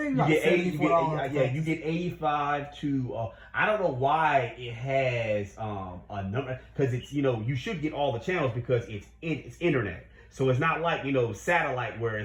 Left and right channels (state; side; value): identical; both; correlation 1.00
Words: You like get 80, $74. you get 85 to. I don't know why it has a number, because it's, you know, you should get all the channels because it's internet. So it's not like, you know, satellite where